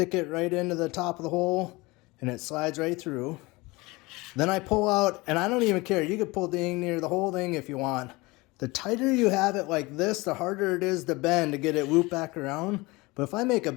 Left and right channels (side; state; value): right; quieter; 23.1 dB